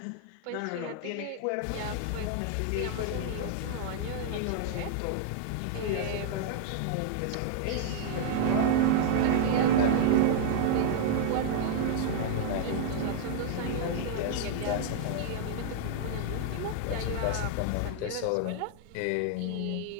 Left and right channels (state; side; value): different; both; correlation -0.01